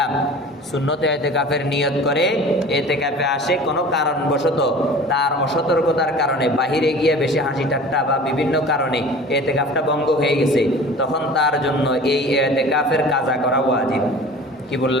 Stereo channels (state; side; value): normal; both; correlation 0.41